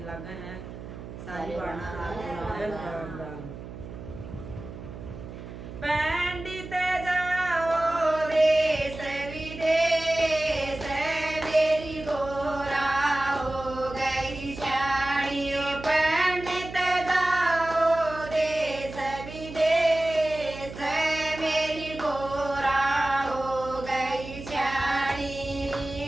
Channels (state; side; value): noise; right; hum, 12 dB below the sound